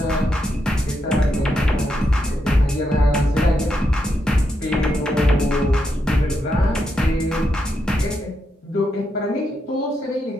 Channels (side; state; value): both; normal; correlation 0.82